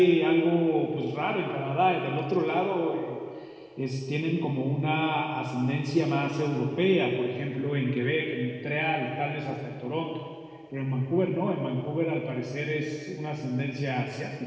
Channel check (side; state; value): both; identical; correlation 1.00